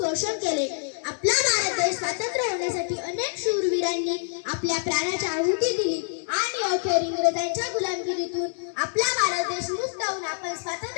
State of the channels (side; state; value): right; silent; digital silence